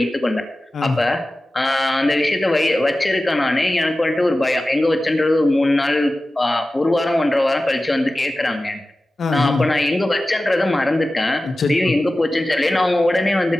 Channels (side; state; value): both; normal; correlation 0.95